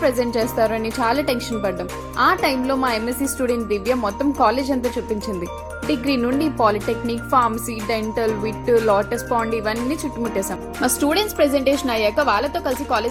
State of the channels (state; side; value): identical; both; correlation 1.00